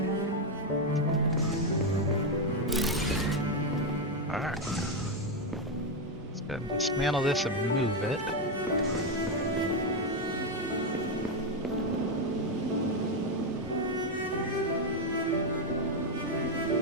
Alright. Let's go ahead and dismantle this and move it.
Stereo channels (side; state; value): both; normal; correlation 0.06